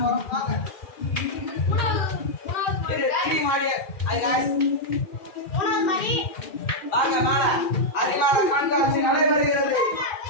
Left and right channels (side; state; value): right; late; 2.4 ms